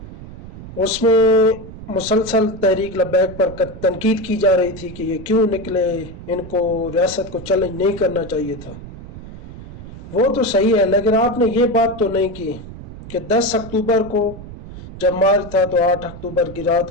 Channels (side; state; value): right; noise; rumble, 14 dB below the sound